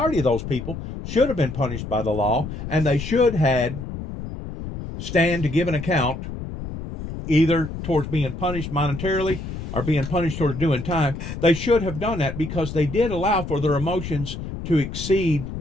of those people should have been punished by the law, and they should had stand to give an account either towards being punished monetarily or being punished towards doing time. They should have done that because they did allow for their emotions to exceed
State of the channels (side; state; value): left; noise; rumble, 8 dB below the sound